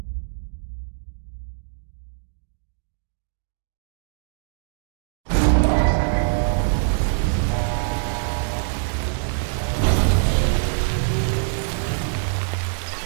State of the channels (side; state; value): left; silent; digital silence